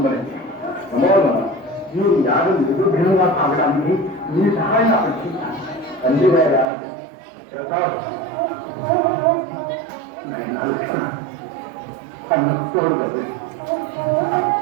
మీరు యాగం నిర్విఘ్నంగా సాగడానికి మీ సహాయం అపేక్షించాను. తండ్రి గారి నాయన లక్ష్మణ తోడు కదా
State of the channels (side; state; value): left; drops out; at 6.7 s